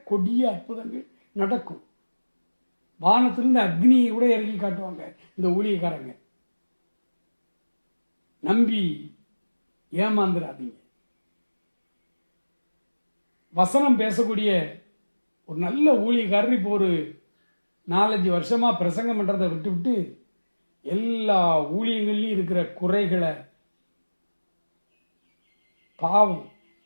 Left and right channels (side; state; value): both; inverted; correlation -1.00